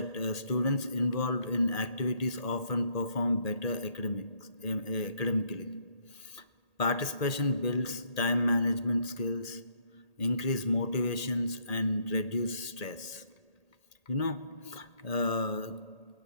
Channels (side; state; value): right; late; 1.8 ms